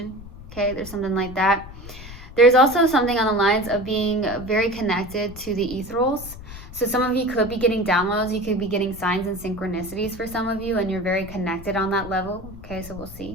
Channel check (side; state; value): left; noise; rumble, 15 dB below the sound